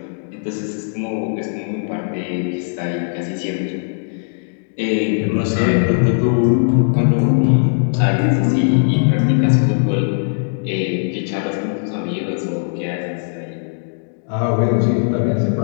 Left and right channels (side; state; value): right; silent; digital silence